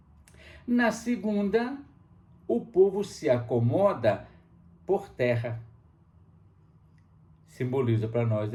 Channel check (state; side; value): identical; both; correlation 1.00